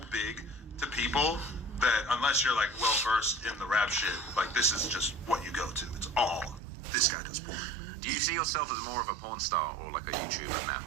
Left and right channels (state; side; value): drops out; left; at 6.6 s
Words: big to people that unless you're like well versed in the rap shit, like this is just what you go to. It's all this guy does porn. Do you see yourself as more of a porn star or like a YouTuber now?